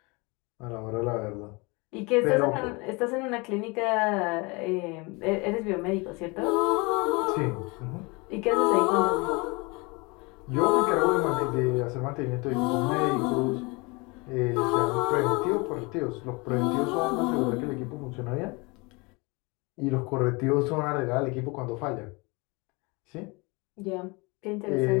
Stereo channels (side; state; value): right; quieter; 27.5 dB